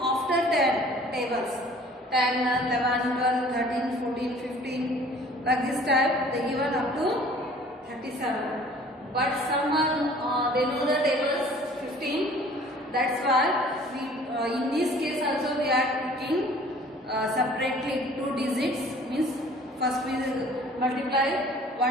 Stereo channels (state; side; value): normal; both; correlation 0.51